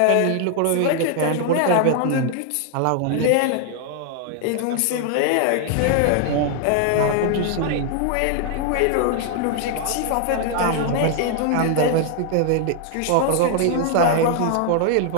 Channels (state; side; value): different; both; correlation 0.00